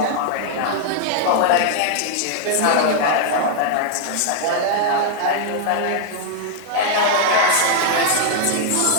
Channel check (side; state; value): both; different; correlation -0.01